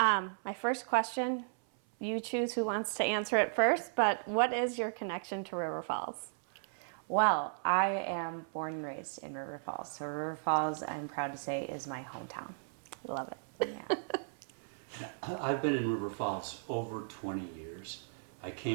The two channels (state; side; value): silent; left; 54 dB below the other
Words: first question, you choose who wants to answer it first, but what is your connection to River Falls? Well, I am born and raised in River Falls. So River Falls, I'm proud to say, is my hometown. Love it. Yeah. I've been in River Falls over 20 years. I